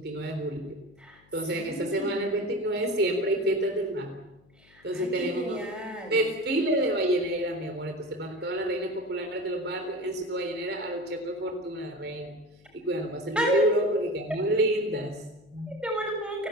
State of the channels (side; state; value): left; noise; hum, 30 dB below the sound